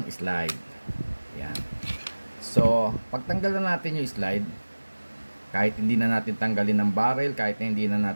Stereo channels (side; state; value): both; inverted; correlation -1.00